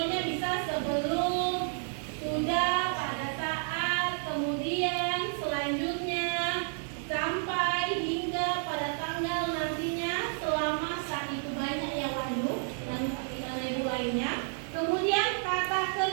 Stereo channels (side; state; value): left; silent; 57 dB below the other